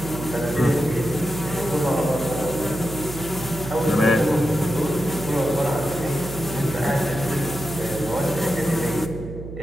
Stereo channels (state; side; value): noise; right; hum, 10 dB below the sound